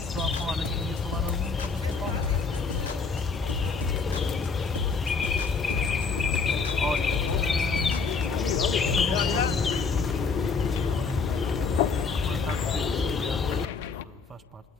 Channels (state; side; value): quieter; right; 4.8 dB